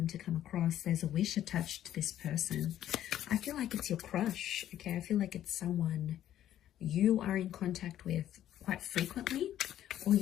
to come across, there's a wish attached to this person. I feel like it's your crush. Okay, I feel like it's someone you are in contact with quite frequently, or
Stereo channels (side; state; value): right; quieter; 11.8 dB